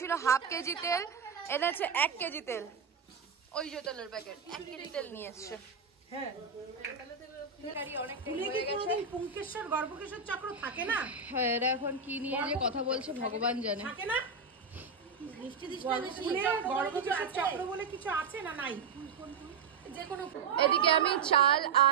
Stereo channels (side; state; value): left; quieter; 5.3 dB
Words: 1/2 কেজি তেল, এনেছে 1 কেজি তেল। ওই যে তেলের প্যাকেট 1 কেজি তেল নিয়ে এসছে। এরা এখন কি নিয়ে যে কথা বলছে ভগবান জানে। এদিকে আমি চাল